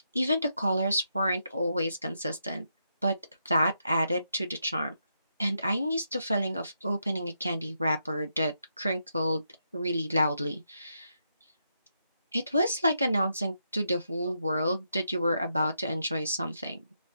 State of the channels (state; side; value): inverted; both; correlation -0.81